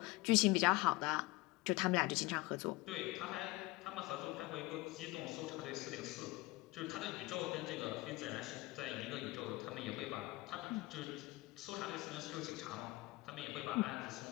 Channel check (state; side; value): quieter; right; 21.2 dB